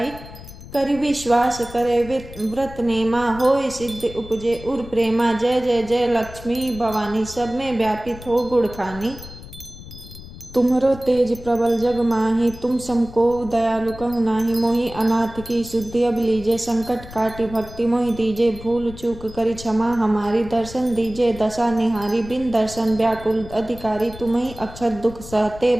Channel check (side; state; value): left; noise; rumble, 15 dB below the sound